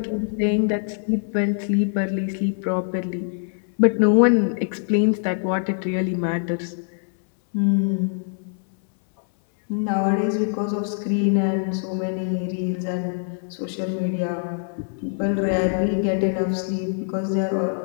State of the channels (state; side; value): silent; right; 63 dB below the other